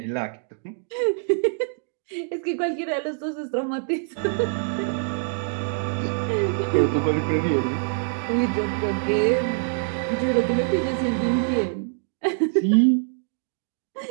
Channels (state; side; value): silent; left; digital silence